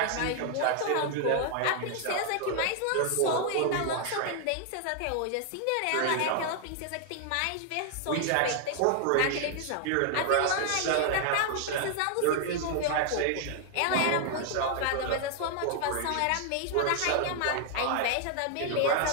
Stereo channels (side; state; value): both; different; correlation 0.00